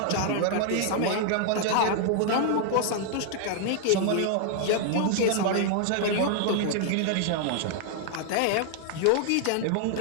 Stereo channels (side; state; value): both; different; correlation 0.00